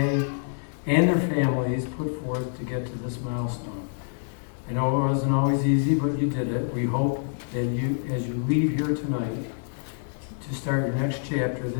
and their families put forth to get to this milestone. I know it wasn't always easy, but you did it. We hope that you, as you leave here tonight to start your next chapter,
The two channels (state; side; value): silent; right; digital silence